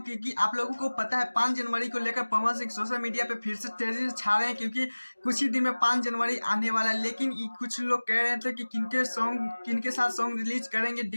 क्योंकि आप लोगों को पता है 5 जनवरी को लेकर पवन सिंह सोशल मीडिया पे फिर से तेजी से छा रहे हैं, क्योंकि कुछ ही दिन में 5 जनवरी आने वाला है। लेकिन कुछ लोग कह रहे थे कि किनके साथ सॉन्ग रिलीज करेंगे।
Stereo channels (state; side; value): inverted; both; correlation -1.00